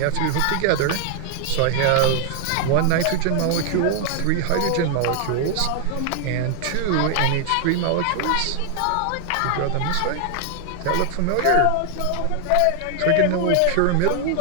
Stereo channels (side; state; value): both; different; correlation 0.00